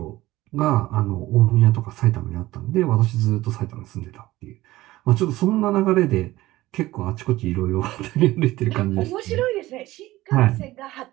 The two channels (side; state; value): left; quieter; 17.3 dB